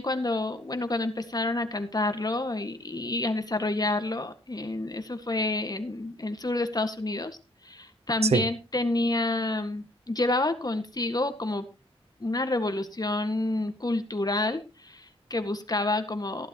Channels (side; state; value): both; normal; correlation 0.62